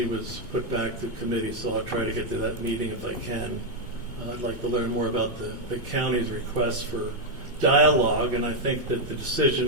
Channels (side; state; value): both; normal; correlation 0.01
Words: was put back to committee, so I'll try to get to that meeting if I can. I'd like to learn more about the county's request for dialogue, and I think that the